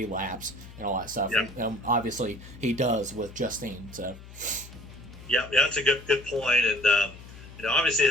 and all that stuff. And obviously he does with Justine. So yeah, that's a good point. And obviously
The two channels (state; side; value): noise; left; hum, 17 dB below the sound